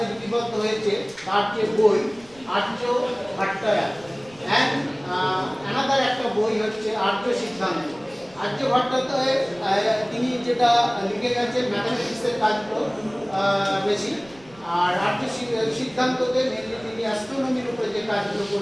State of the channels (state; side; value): noise; right; rumble, 26 dB below the sound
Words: লিপিবদ্ধ হয়েছে তার যে বই আর্য ভাট্টায়া অ্যান্ড অ্যানাদার একটা বই হচ্ছে আর্য সিদ্ধান্ত। আর্য ভট্টাচার্য তিনি যেটা লিখে গেছেন ম্যাথামেটিক্সের কাজগুলো বেশি, আর আর্য সিদ্ধান্ততে মেনলি তিনি অ্যাস্ট্রোনমির উপরে যে কাজগুলো